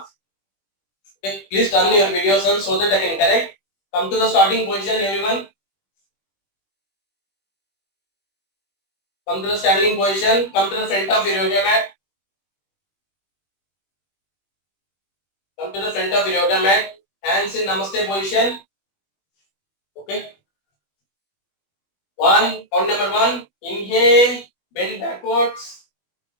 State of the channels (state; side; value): late; right; 20 ms